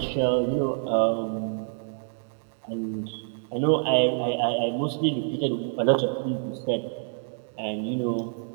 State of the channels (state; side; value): silent; left; digital silence